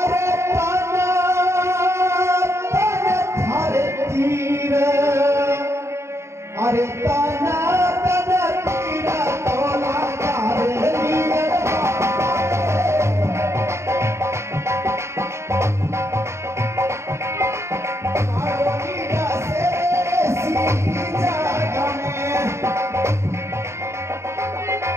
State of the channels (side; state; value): left; late; 0.13 ms